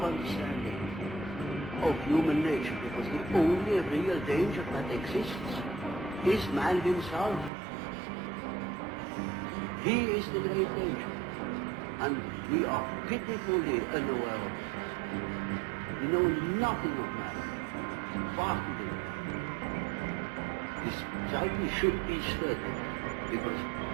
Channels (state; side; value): drops out; left; at 7.5 s